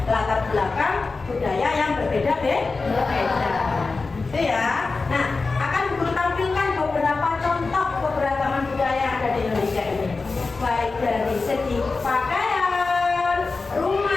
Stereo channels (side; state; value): right; quieter; 4.0 dB